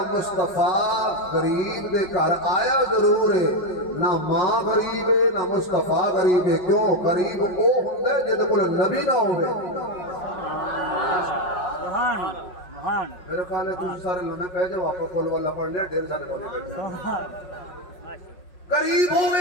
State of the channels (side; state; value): right; late; 5.5 ms